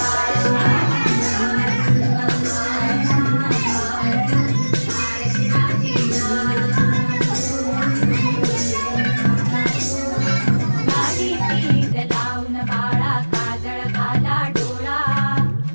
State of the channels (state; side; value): inverted; both; correlation -1.00